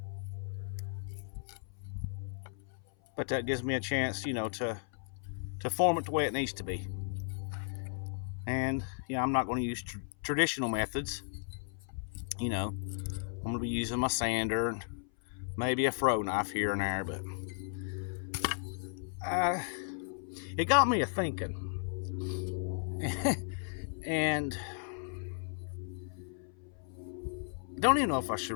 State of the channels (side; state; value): right; silent; 54 dB below the other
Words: but that gives me a chance, to form it the way it needs to be. And I'm not going to use traditional methods. I'm going to be using my sander and maybe a fro knife here and there, but it got me a thinking. And I don't even know if I should